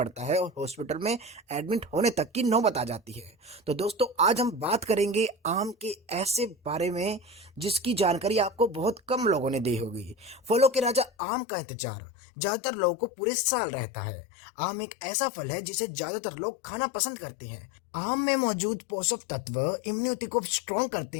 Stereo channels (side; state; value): right; drops out; at 11.1 s